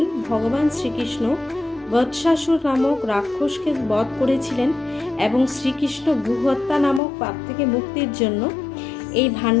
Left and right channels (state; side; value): drops out; right; at 7.0 s